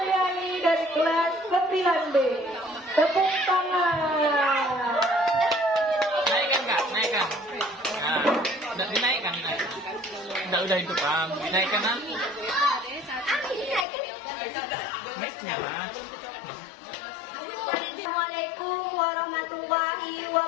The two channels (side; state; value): right; drops out; at 13.9 s